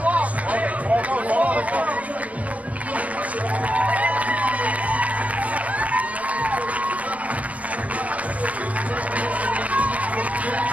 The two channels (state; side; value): late; left; 0.069 ms